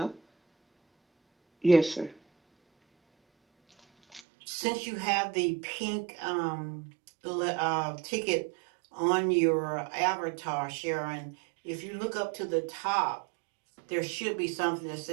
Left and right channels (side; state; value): left; drops out; at 4.2 s